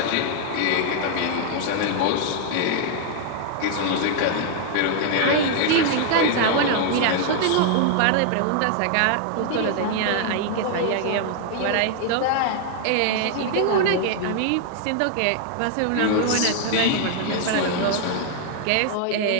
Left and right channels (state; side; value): different; both; correlation 0.00